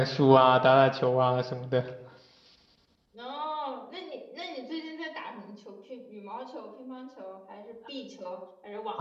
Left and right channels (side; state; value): both; identical; correlation 1.00